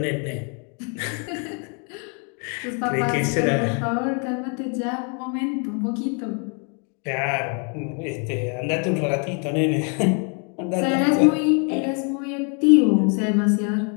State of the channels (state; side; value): quieter; right; 38.7 dB